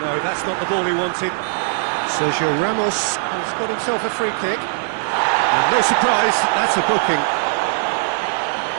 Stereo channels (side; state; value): left; silent; digital silence